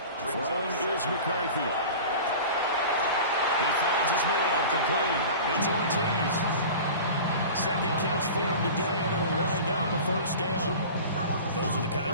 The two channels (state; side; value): inverted; both; correlation -0.36